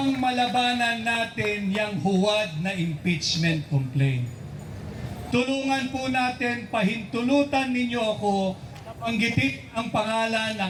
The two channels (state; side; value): identical; both; correlation 1.00